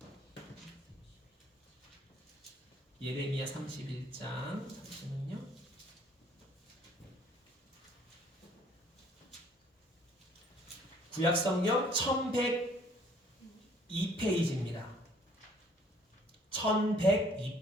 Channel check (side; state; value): both; normal; correlation 0.58